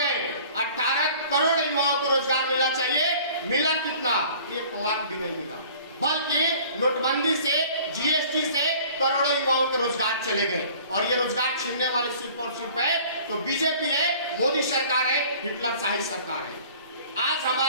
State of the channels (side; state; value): both; inverted; correlation -0.49